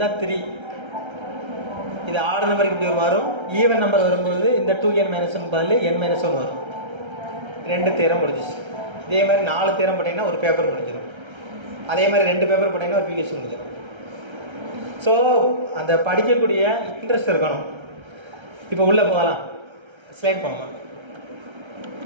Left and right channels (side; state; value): left; late; 1.3 ms